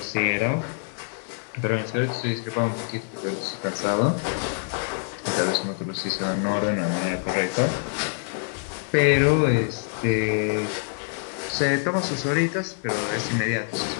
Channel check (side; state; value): right; silent; 61 dB below the other